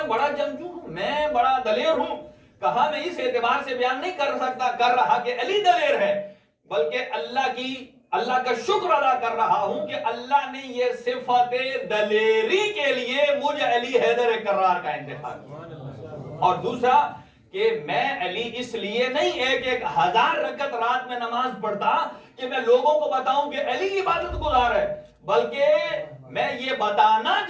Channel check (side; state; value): both; identical; correlation 1.00